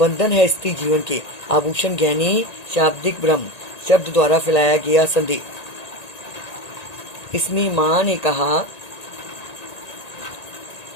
है स्त्री जीवन के। आभूषण गहने शाब्दिक भ्रम, शब्द द्वारा फैलाया गया संदेह। इसमें माँ ने कहा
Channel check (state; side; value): late; right; 1.8 ms